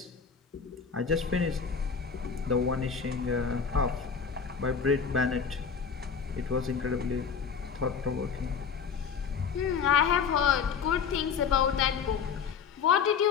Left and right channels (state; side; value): quieter; right; 6.3 dB